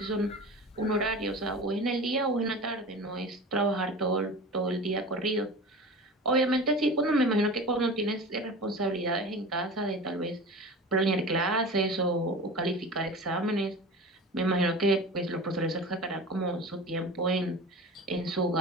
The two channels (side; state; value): both; normal; correlation 0.34